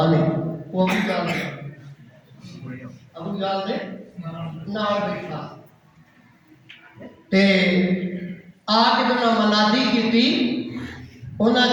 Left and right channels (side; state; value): both; identical; correlation 1.00